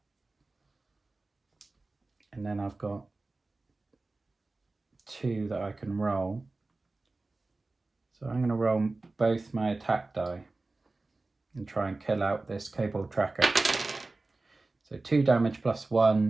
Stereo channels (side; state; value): left; quieter; 3.3 dB